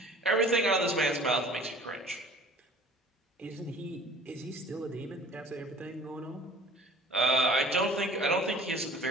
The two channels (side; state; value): both; normal; correlation 0.47